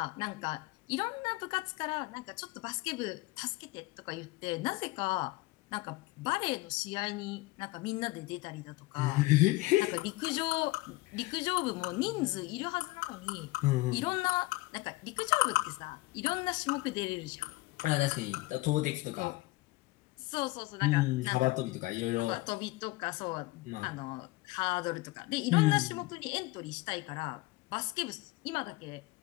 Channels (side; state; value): right; quieter; 20.9 dB